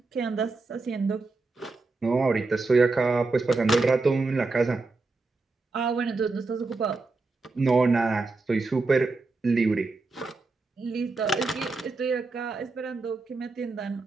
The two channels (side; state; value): left; quieter; 3.7 dB